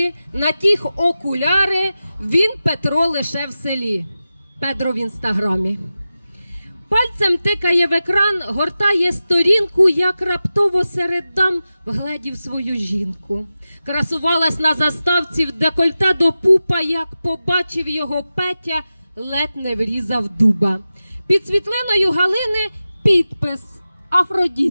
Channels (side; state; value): both; inverted; correlation -0.94